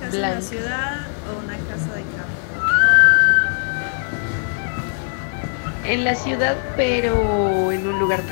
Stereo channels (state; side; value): silent; right; 56 dB below the other